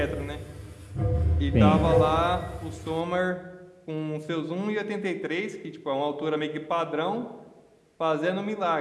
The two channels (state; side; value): identical; both; correlation 1.00